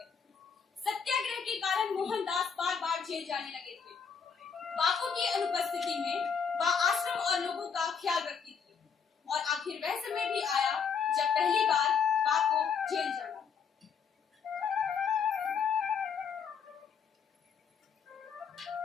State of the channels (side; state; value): right; quieter; 6.4 dB